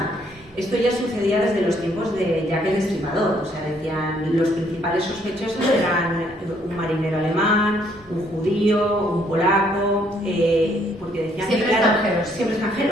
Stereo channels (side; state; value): both; normal; correlation 0.67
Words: Esto ya sucedía desde los tiempos de Jack el Destripador, o sea, decían los principales sospechosos eran un marinero alemán, un judío, un polaco, porque decían siempre que, claro, extranjeros. siempre